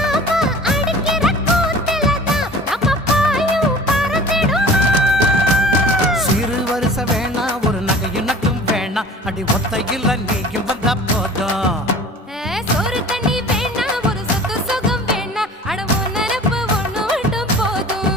அடிக்கிற கூத்திலதான் நம்ம பாயும் பறந்திடுமா சிறு வருஷ வேணா ஒரு நகையும் நட்டும் வேணா அடி ஒத்தையில் நீயும் வந்தா போதும் சோறு தண்ணி வேணா ஒரு சொத்து சுகம் வேணா அட ஒன்னனப்பு ஒண்ணு மட்டும்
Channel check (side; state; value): both; normal; correlation 0.43